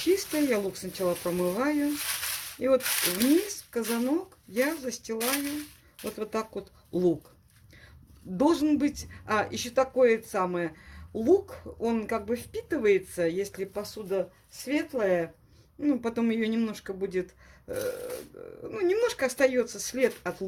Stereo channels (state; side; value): identical; both; correlation 1.00